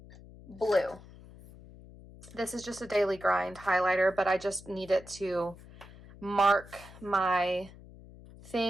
blue. This is just a daily grind highlighter, but I just need it to mark my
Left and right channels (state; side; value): noise; left; hum, 19 dB below the sound